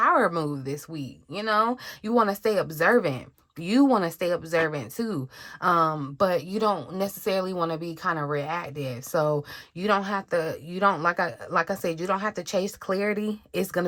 move this week. You want to stay observant. You want to stay observant too. But you don't necessarily want to be kind of reactive. So you don't have to, like I said, you don't have to chase clarity. It's going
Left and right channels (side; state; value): both; identical; correlation 1.00